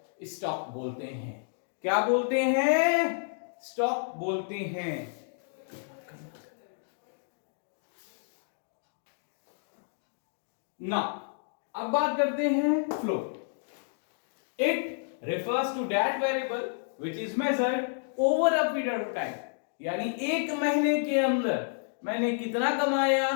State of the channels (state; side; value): silent; right; digital silence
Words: स्टॉक बोलते हैं. क्या बोलते हैं? स्टॉक बोलते हैं. ना अब बात करते हैं flow. It refers to that variable which is measured over a period of time. यानी एक महीने के अंदर मैंने कितना कमाया,